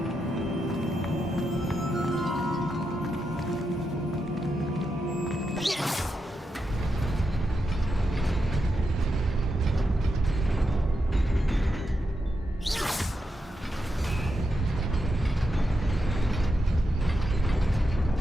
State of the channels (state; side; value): normal; both; correlation 0.85